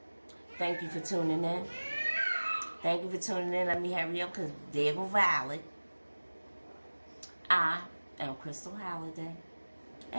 thank you for tuning in. Thank you for tuning in. Let me hurry up because there go Violet. I am Crystal Holliday.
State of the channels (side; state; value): both; inverted; correlation -1.00